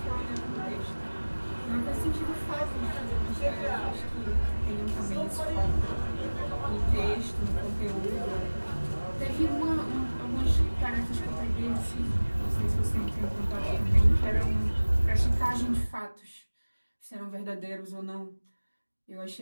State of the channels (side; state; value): both; inverted; correlation -1.00